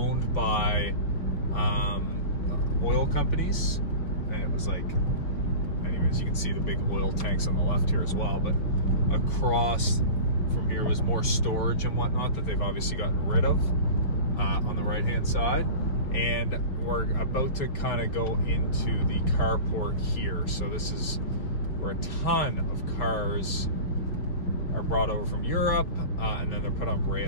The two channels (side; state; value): right; late; 5.9 ms